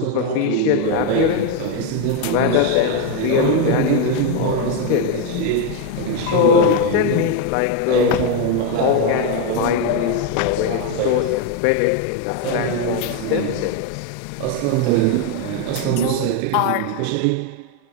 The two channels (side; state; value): both; different; correlation 0.02